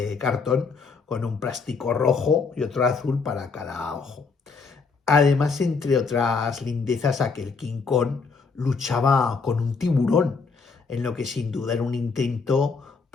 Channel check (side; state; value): right; quieter; 4.8 dB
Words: cartón con un plástico rojo y otro azul para cada ojo. Además, entre otras lindezas, aquel King Kong luchaba con un tiburón, en lo que sin duda era un intento